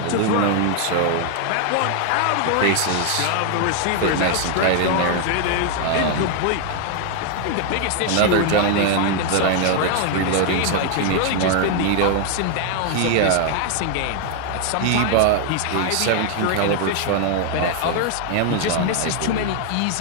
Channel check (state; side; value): different; both; correlation 0.00